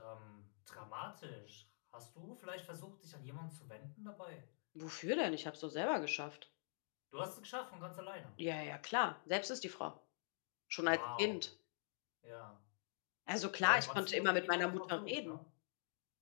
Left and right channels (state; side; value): silent; right; digital silence